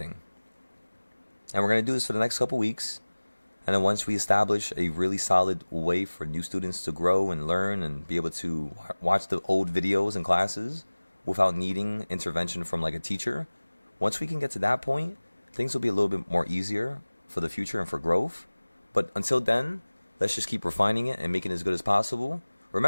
And we're going to do this for the next couple weeks. And then once we establish a really solid way for new students to grow and learn and be able to watch the old videos and classes without needing intervention from like a teacher, once we can get to that point, things will be a little bit more easier for the future and for growth. But until then, let's just keep refining it and making it as good as possible.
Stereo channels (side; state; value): both; inverted; correlation -1.00